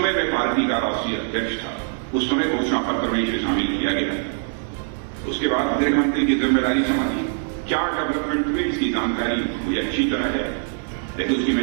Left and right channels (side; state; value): left; silent; digital silence